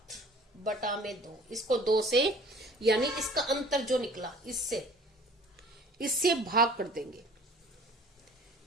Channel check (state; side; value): normal; both; correlation 0.49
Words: बटा में 2, इसको 2 से यानी इसका अंतर जो निकला इससे भाग कर देंगे,